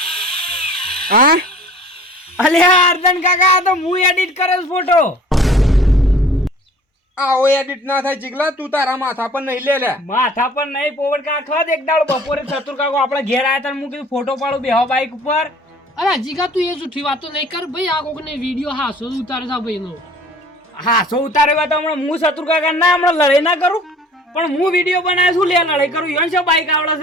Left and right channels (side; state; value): both; normal; correlation 0.49